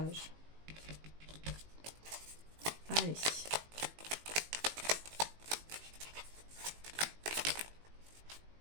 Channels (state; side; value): late; left; 18 ms